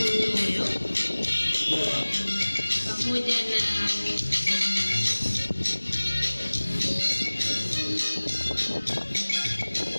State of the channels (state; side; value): inverted; both; correlation -1.00